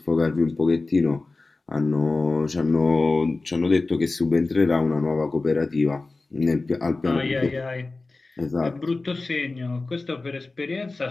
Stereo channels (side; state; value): right; quieter; 3.4 dB